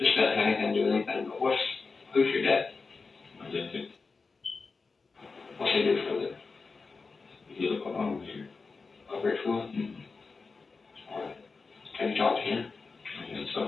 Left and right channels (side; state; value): right; quieter; 4.4 dB